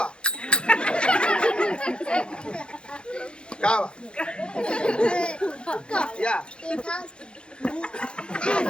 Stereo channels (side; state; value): right; late; 0.054 ms